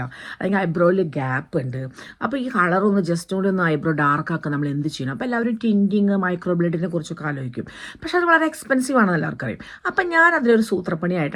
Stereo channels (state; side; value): identical; both; correlation 1.00